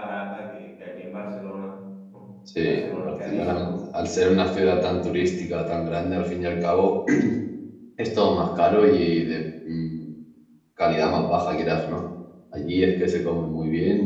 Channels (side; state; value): both; identical; correlation 1.00